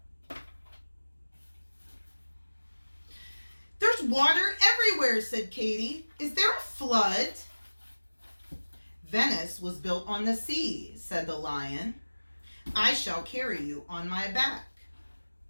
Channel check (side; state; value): both; inverted; correlation -1.00